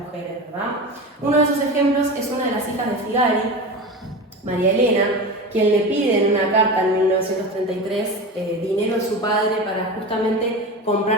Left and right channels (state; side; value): normal; both; correlation 0.27